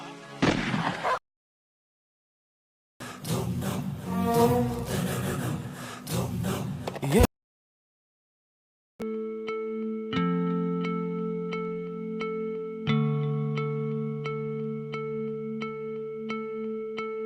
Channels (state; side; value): identical; both; correlation 1.00